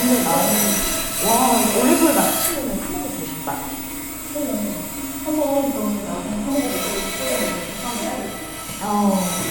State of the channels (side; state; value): both; identical; correlation 1.00